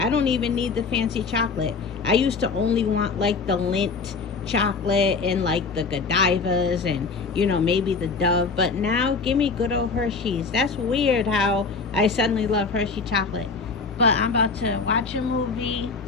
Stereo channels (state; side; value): quieter; right; 4.7 dB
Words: don't even need the fancy chocolate. I used to only want like the Lindt chocolate and like the Godivas and maybe the Dove, but now give me good old Hershey's. That's weird how I suddenly love Hershey chocolate. But I'm about to watch a movie